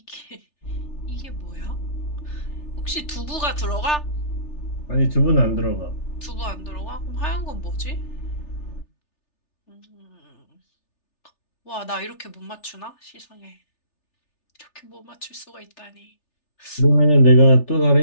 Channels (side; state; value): right; late; 3.4 ms